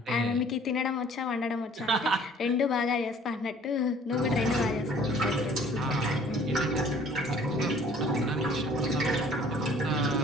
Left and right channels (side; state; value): both; normal; correlation 0.54